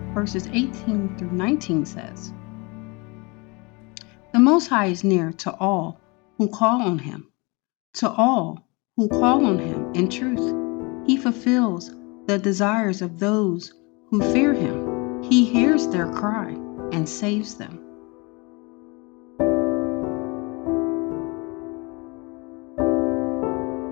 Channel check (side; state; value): right; quieter; 28.1 dB